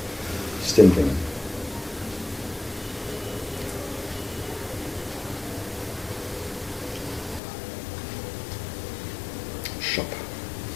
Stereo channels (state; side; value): drops out; right; at 7.4 s